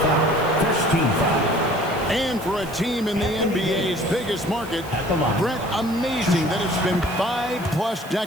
foul, first team foul. And for a team in the NBA's biggest market, Brett, amazing that it's been 5+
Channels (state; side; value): noise; right; hiss, 19 dB below the sound